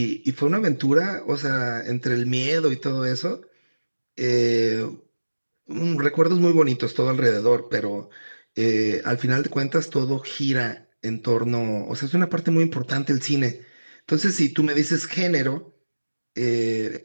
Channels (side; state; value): both; inverted; correlation -1.00